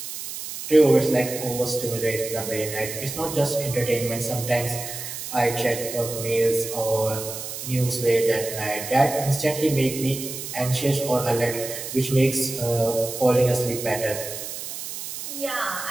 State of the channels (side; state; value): right; noise; hiss, 8 dB below the sound